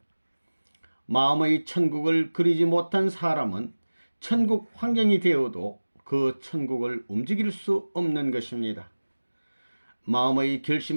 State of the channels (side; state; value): both; inverted; correlation -1.00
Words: 마음의 천국을 그리지 못한 사람은 천국 환경이 되어도 그 천국을 움직일 수 없는 것입니다. 마음의